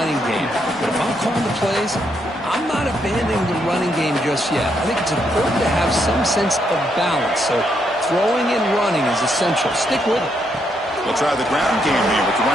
game. But if I'm calling the plays, I'm not abandoning the running game just yet. I think it's important to have some sense of balance. So throwing and running is essential. Stick with it. We'll try the ground game here with the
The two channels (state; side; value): normal; both; correlation 0.77